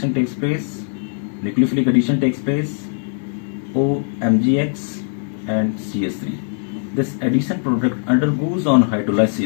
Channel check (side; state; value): right; silent; 60 dB below the other